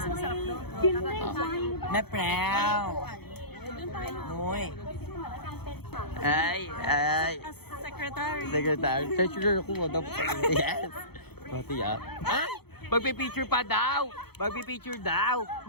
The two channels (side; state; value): right; late; 0.97 ms